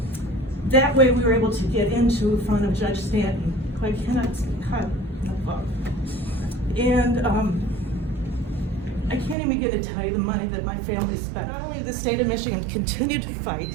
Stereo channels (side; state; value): left; drops out; at 9.3 s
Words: That way, we were able to get into front of Judge Stanton, who I cannot cut above. And I can't even begin to tell you the money that my family spent. Not only did the state of Michigan continue to fight,